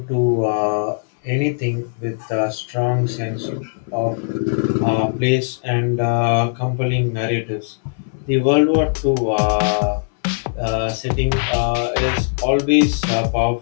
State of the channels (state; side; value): silent; right; 63 dB below the other